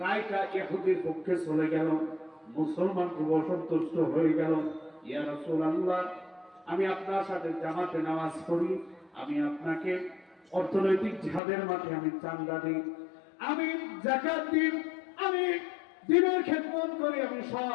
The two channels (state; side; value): drops out; right; at 11.4 s